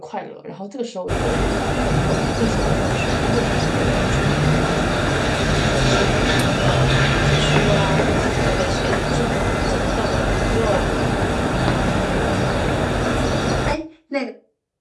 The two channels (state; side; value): identical; both; correlation 1.00